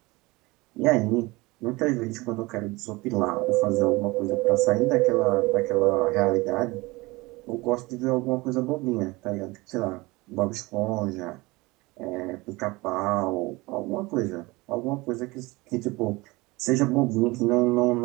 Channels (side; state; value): left; quieter; 22.8 dB